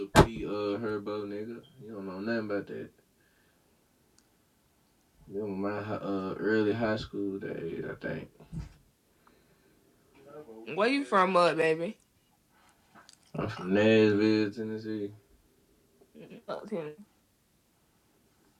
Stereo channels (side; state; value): both; identical; correlation 1.00